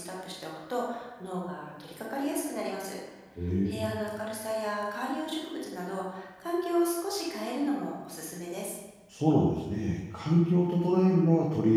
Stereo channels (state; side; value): identical; both; correlation 1.00